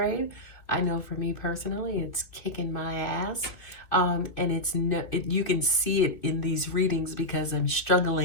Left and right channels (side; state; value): right; late; 2.7 ms